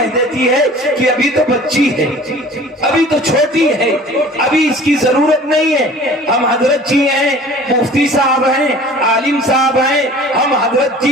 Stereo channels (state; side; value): normal; both; correlation 0.46